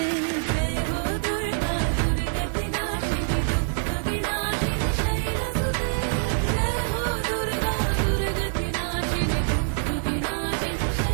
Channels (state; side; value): silent; left; digital silence